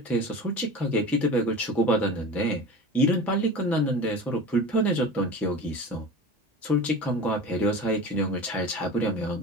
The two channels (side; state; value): both; normal; correlation 0.34